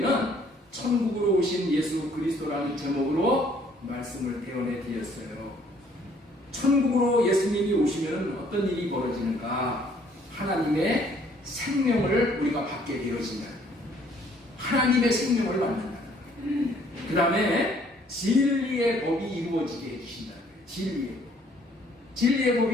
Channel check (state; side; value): normal; both; correlation 0.62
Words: 천국으로 오신 예수 그리스도라는 제목으로 말씀을 대언해 드렸어요. 천국으로 예수님이 오시면 어떤 일이 벌어지는가? 하나님의 생명을 우리가 받게 되어진다. 하나님의 생명을 받는다. 그 다음에 진리의 법이 이루어지게 해주신다. 진리의 법. 진리의